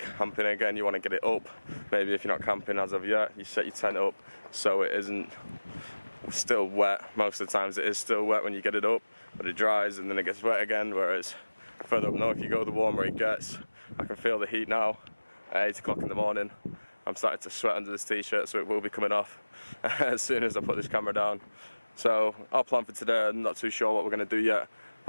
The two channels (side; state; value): both; inverted; correlation -1.00